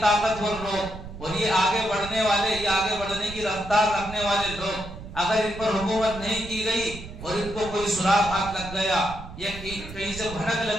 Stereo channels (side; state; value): right; noise; rumble, 12 dB below the sound